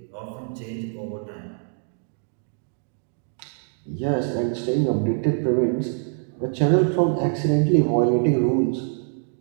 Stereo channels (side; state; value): left; silent; 60 dB below the other